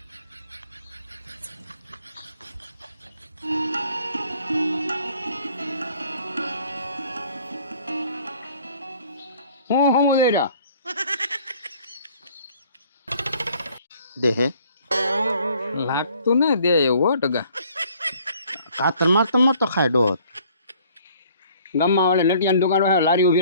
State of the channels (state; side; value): inverted; both; correlation -0.57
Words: હું લઈ રહ્યા દે હે લાગતું ને દે એવું હો ટગા કાતર મારતો ખાય ડોત ગામમાં વાળે નટિયાની દુકાન હોય લારી